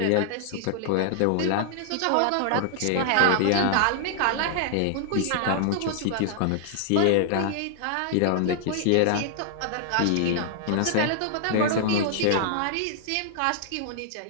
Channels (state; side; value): different; both; correlation -0.01